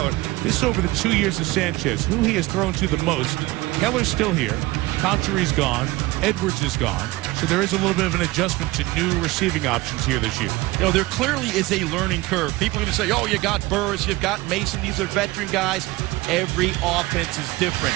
this is over the 2 years of Sanchez, who he has thrown to the most. Keller's still here. Conchery's gone. Edwards is gone. So there is a little bit of an adjustment to new receiving options here this year. You know, there clearly is a learning curve. People are going to say, oh, you got Burris, you've got Mason. These are veteran guys. Every offense is different.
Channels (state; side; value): quieter; left; 19.8 dB